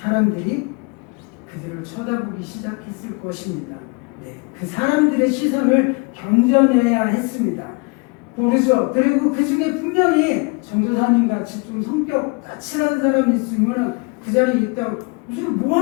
그들을 쳐다보기 시작했을 것입니다. 그 사람들의 시선을 견뎌내야 했습니다. 모르죠. 그리고 그 중에 분명히 전도사님 같이 좀 성격 까칠한 사람이 있으면 그 자리에 있다가 무슨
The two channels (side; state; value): right; quieter; 30.7 dB